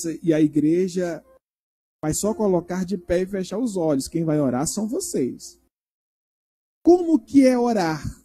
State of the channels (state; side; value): identical; both; correlation 1.00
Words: e a igreja vai só colocar de pé e fechar os olhos. Quem vai orar são vocês. Como que é orar?